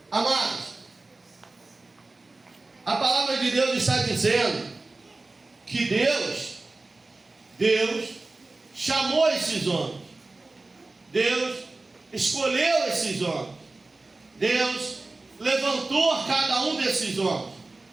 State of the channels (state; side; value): quieter; left; 3.3 dB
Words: Amados, a palavra de Deus está dizendo que Deus chamou esses homens. Deus escolheu esses homens. Deus levantou cada um desses homens.